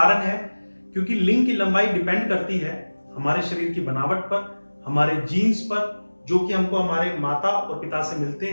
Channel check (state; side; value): inverted; both; correlation -1.00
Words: है क्योंकि लिंक की लंबाई डिपेंड करती है हमारे शरीर की बनावट पर, हमारे जीन्स पर, जो कि हमको हमारे माता और पिता से मिलते